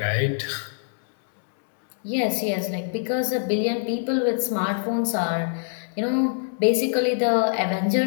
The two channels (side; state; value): right; silent; digital silence